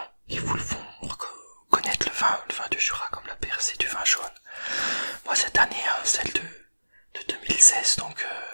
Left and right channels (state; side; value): inverted; both; correlation -1.00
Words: qui vous le font connaître le vin du Jura, comme la percée du vin jaune. Moi cette année, hein, celle de 2016, donc